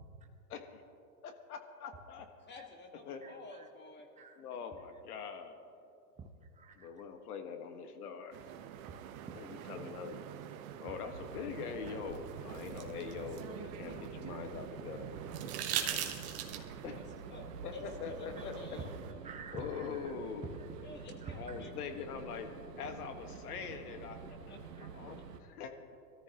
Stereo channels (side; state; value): both; normal; correlation 0.07